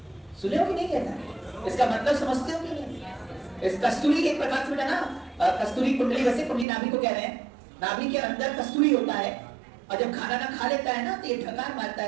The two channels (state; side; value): drops out; left; at 6.7 s